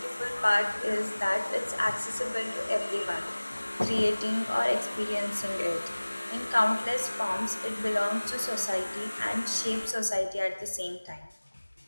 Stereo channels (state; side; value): inverted; both; correlation -1.00